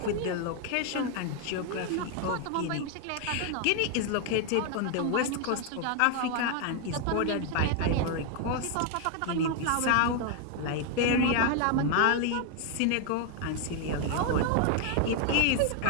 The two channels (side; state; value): both; different; correlation 0.01